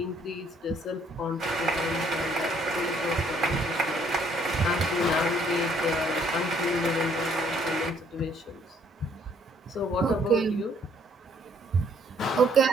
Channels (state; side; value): normal; both; correlation 0.64